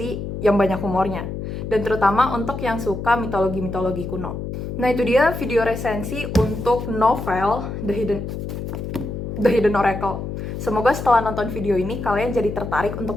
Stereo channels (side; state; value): left; noise; hum, 6 dB below the sound